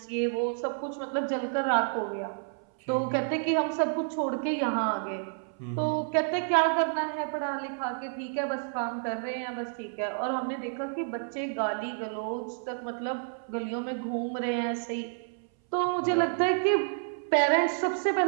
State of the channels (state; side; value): silent; left; 58 dB below the other